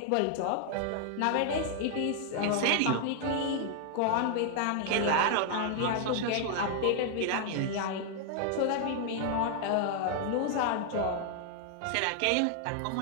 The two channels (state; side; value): different; both; correlation 0.00